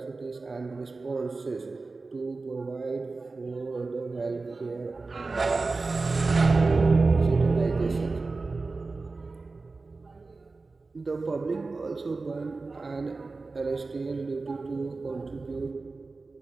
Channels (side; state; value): left; quieter; 3.8 dB